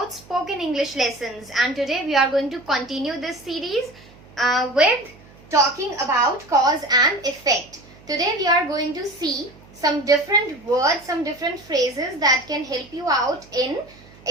spoken English lessons, and today we are going to continue this series with talking about cause and effect. Today we are going to see some different words, some different phrases that can help you out in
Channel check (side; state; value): right; noise; hum, 24 dB below the sound